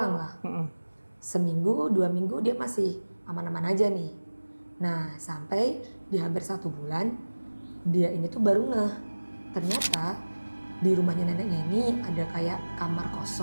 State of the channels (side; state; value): both; inverted; correlation -1.00